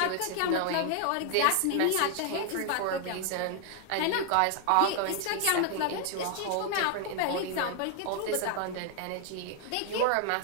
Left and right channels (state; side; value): different; both; correlation 0.00